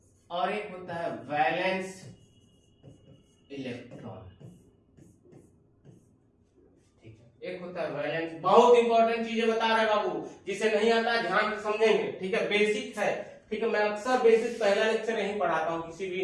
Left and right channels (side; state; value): both; identical; correlation 1.00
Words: और एक होता है वैलेंस इलेक्ट्रॉन, ठीक है। एक होता है वैलेंस, बहुत इंपॉर्टेंट चीजें बता रहे बाबू, जिसे नहीं आता ध्यान से समझेंगे, ठीक है, बेसिक है, ठीक है। मैं अक्सर बेसिक पहला लेक्चर यहीं पढ़ाता हूँ, किसी